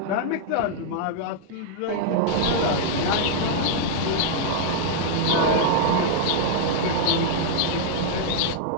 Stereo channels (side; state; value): both; different; correlation -0.01